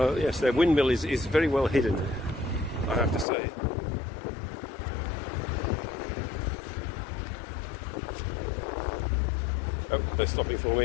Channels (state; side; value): drops out; right; at 3.2 s